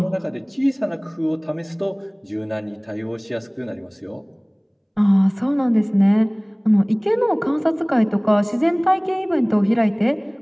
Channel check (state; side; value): identical; both; correlation 1.00